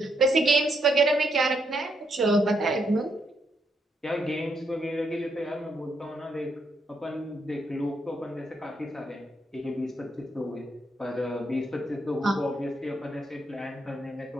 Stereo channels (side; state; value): both; normal; correlation 0.77